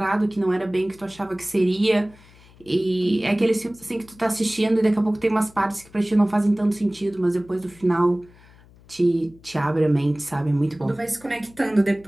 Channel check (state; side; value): noise; left; hum, 26 dB below the sound